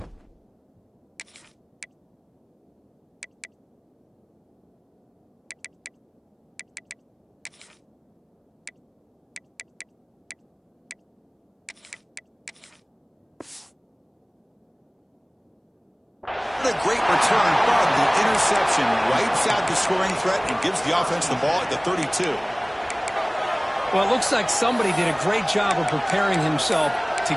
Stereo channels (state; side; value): identical; both; correlation 1.00